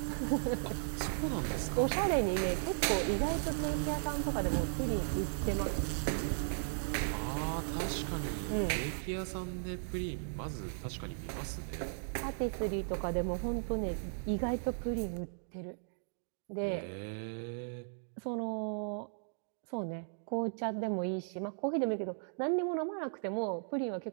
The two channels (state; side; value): silent; left; digital silence